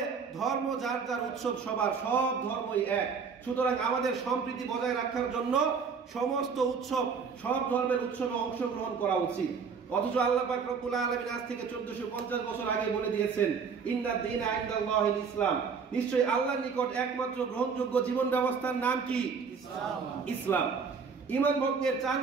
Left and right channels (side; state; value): left; quieter; 5.7 dB